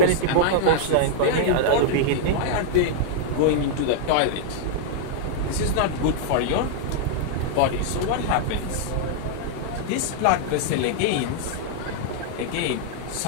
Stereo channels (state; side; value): different; both; correlation -0.01